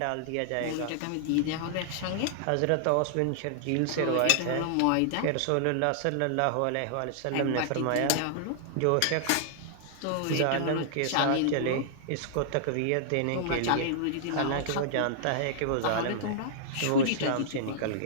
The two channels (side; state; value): both; different; correlation -0.01